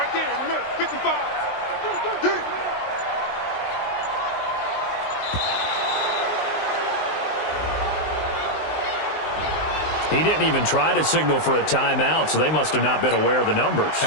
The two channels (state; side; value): late; right; 19 ms